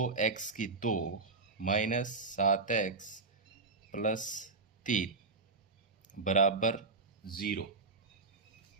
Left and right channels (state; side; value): quieter; left; 3.9 dB